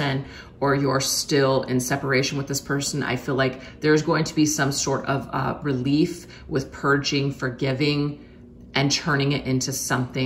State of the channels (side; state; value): both; identical; correlation 1.00